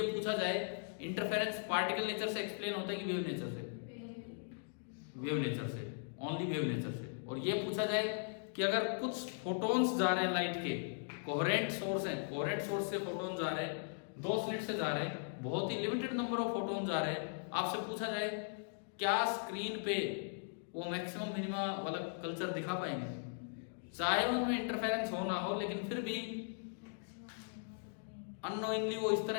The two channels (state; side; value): silent; right; digital silence